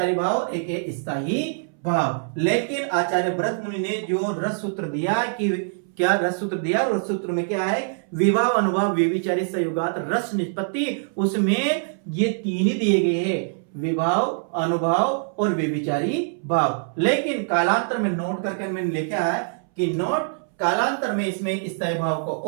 भाव, एक है स्थायी भाव। लेकिन आचार्य भरत मुनि ने जो रस सूत्र दिया कि क्या रस सूत्र दिया, रस सूत्र में क्या है, विभाव, अनुभाव, व्यभिचारी संयुगात रस निष्पत्ति, उसमें ये 3 ही दिए गए हैं, विभाव, अनुभाव और व्यभिचारी भाव। लेकिन कालांतर में नोट करके मैंने लिखा है कि नोट कालांतर में इसमें स्थायी भाव को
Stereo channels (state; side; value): silent; left; 63 dB below the other